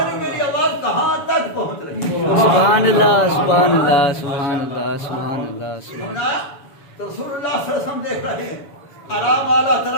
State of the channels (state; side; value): late; right; 7.0 ms